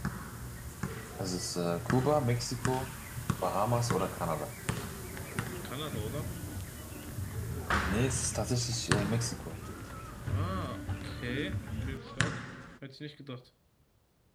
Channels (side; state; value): both; identical; correlation 1.00